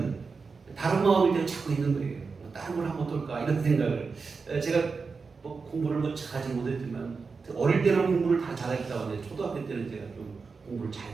다른 마음일 때는 자꾸 있는 거예요. 다른 걸 하면 어떨까 이런 생각을. 제가 뭐 공부를 뭐 잘하지 못했지만 어릴 때는 공부를 다 잘했다고 하는데 초등학교 때는 제가 좀 공부를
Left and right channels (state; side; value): quieter; left; 4.8 dB